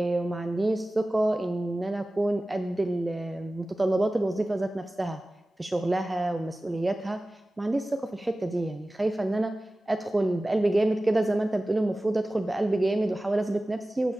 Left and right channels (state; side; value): normal; both; correlation 0.96